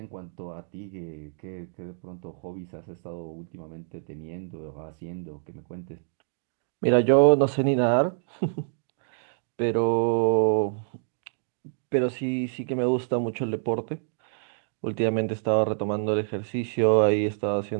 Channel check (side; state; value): left; silent; digital silence